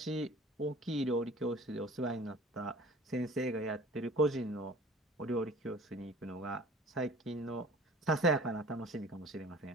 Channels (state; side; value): normal; both; correlation 0.45